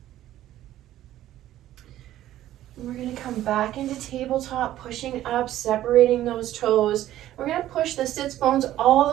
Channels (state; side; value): quieter; left; 13.4 dB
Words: We're going to come back into tabletop, pushing up, separating those toes. We're going to push the sits bones all